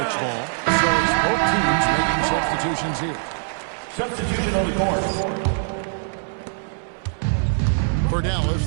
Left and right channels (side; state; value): left; silent; 62 dB below the other